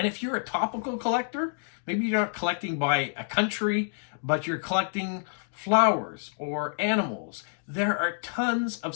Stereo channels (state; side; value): silent; right; digital silence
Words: if you're a topical collector, maybe you're not collecting by a country, but you're collecting flowers or animals. There are tons of